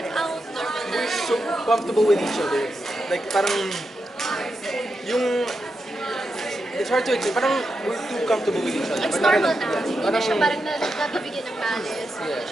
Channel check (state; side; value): normal; both; correlation 0.87